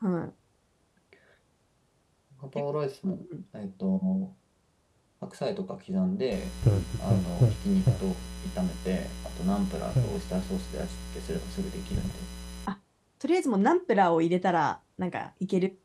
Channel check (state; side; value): identical; both; correlation 1.00